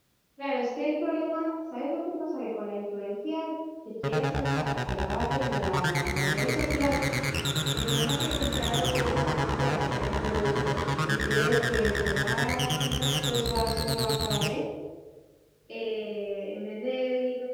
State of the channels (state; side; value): identical; both; correlation 1.00